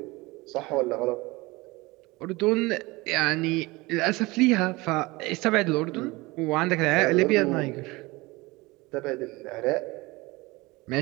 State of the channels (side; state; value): left; quieter; 22.6 dB